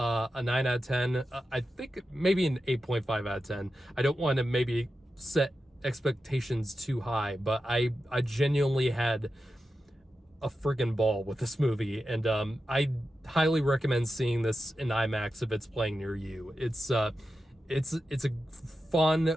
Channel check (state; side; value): normal; both; correlation 0.91